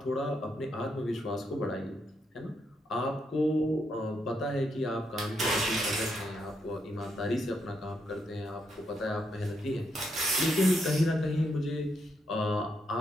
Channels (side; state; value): both; normal; correlation 0.79